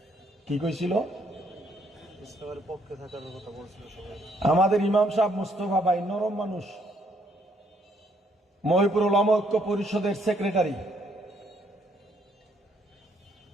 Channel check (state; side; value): normal; both; correlation 0.69